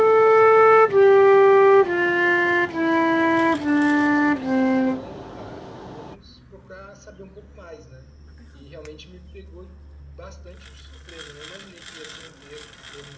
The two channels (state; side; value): identical; both; correlation 1.00